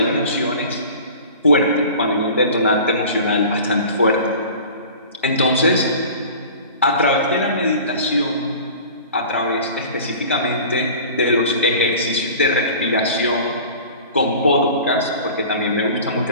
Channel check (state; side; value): inverted; both; correlation -0.41